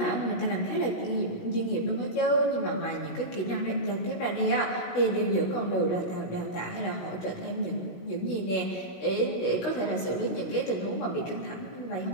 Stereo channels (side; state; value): right; late; 16 ms